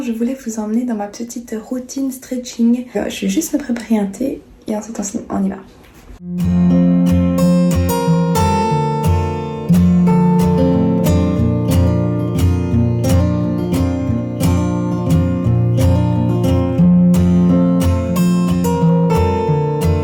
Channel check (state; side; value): identical; both; correlation 1.00